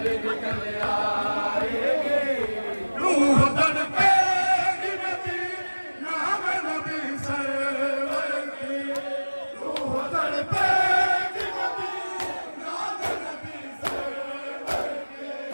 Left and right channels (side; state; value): both; inverted; correlation -1.00